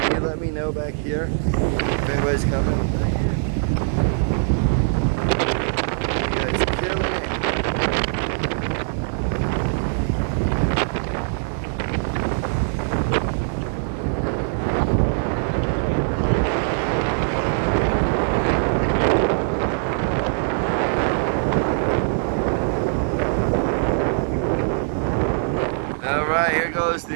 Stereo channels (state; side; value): silent; left; 64 dB below the other